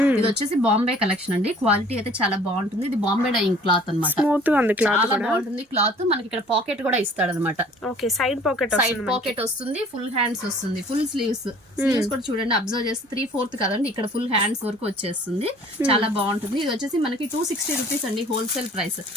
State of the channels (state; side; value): normal; both; correlation 0.52